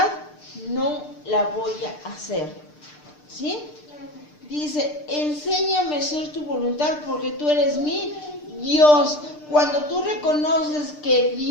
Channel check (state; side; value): late; right; 6.7 ms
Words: no la voy a hacer. ¿Sí? Dice, enséñame a hacer tu voluntad porque tú eres mi Dios. Cuando tú reconoces que